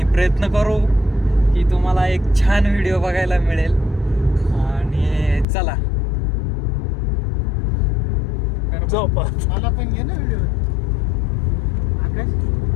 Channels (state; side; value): drops out; right; at 5.5 s